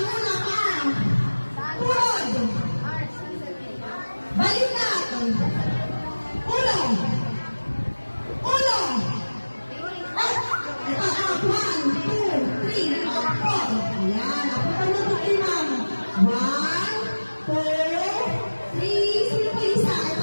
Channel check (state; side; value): inverted; both; correlation -1.00